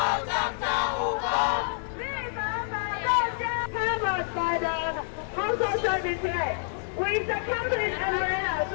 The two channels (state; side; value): silent; right; 60 dB below the other